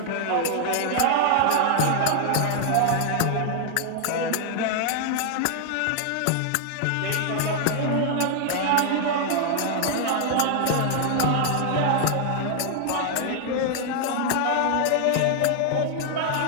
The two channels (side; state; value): both; different; correlation 0.00